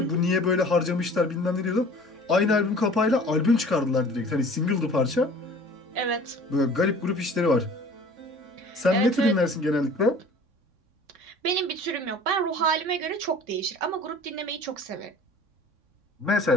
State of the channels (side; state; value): left; late; 3.6 ms